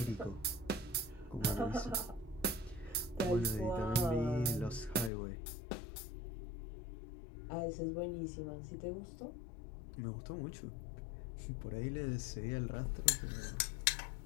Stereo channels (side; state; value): right; drops out; at 5.1 s